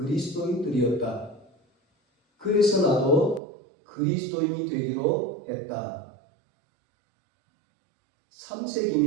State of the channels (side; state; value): left; drops out; at 3.4 s